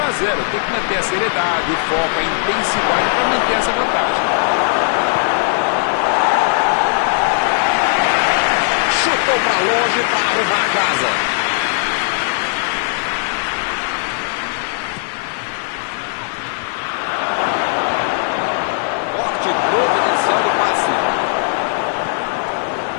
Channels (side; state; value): right; silent; digital silence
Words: a 0. Tem que manter a seriedade, o foco, a intensidade para manter essa vantagem. Chutou para longe para arrumar a casa. Corte providencial do passe.